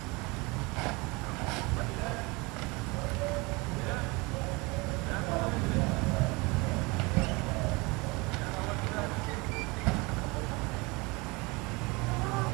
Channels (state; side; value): quieter; left; 25.9 dB